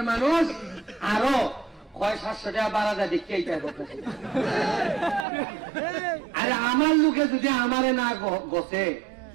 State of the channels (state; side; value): drops out; left; at 5.2 s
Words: মানুষ, আরো কয় 700 টাকা বাড়া যায় দেখতে এইটাই করতেছে। আরে আমার লোকে যদি আমারে না গছে